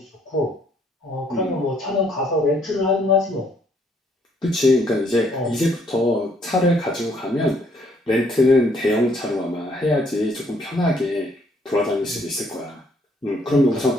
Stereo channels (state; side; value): normal; both; correlation 0.67